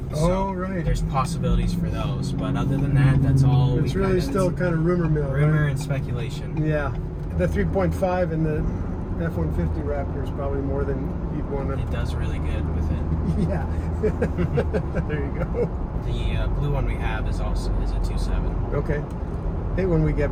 So right. There's possibilities for those, but other than that, that's all. It's really still kind of rumor mill. Rumor right? and speculation. Yeah, the 3.5 in the F-150 Raptor is probably more than you'd want to. It does really good with it. Yeah. There you go. The blue one we have is a 2.7. Okay. Hey, when we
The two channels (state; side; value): identical; both; correlation 1.00